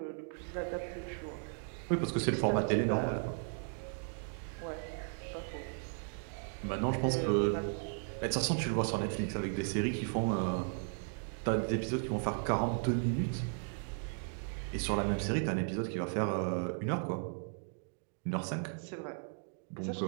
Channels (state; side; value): silent; left; 54 dB below the other